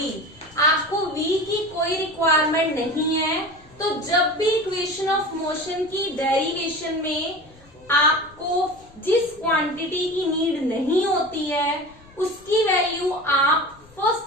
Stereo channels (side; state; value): left; noise; rumble, 26 dB below the sound